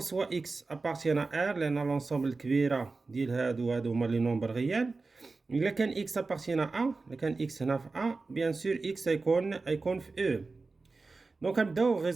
اكس ابارتيان ار لان لونسومبل الكبيره ديال هادو هما لي نومبر ريال. الا كان اكس ابارتيان ا، الا كان اكس هنا في ا بيان سور اكس يكون في او. دونك نبداو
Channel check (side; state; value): left; quieter; 3.8 dB